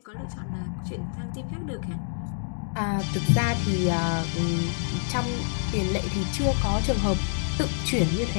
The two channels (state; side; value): silent; right; digital silence